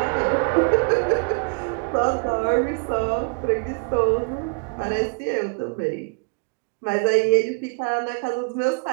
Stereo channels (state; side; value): quieter; left; 35.7 dB